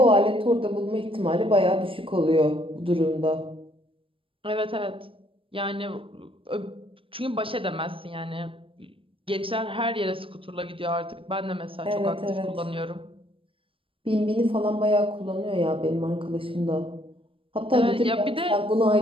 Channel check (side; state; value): left; late; 0.26 ms